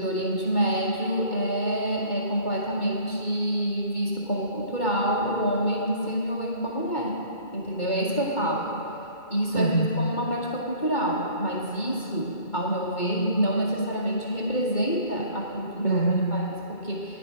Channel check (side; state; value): right; late; 2.2 ms